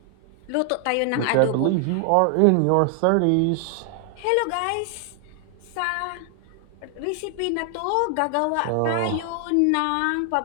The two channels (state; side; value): different; both; correlation 0.00